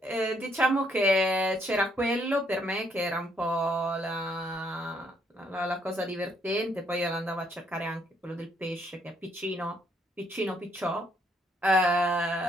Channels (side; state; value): both; normal; correlation 0.70